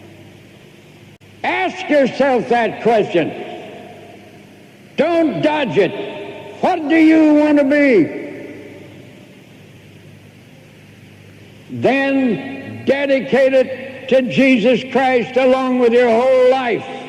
Ask yourself that question. Don't dodge it. What do you want to be? Then dedicate it to Jesus Christ along with your whole life.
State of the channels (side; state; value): both; identical; correlation 1.00